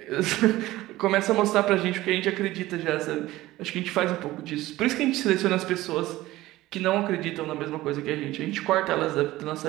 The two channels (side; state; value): left; quieter; 17.1 dB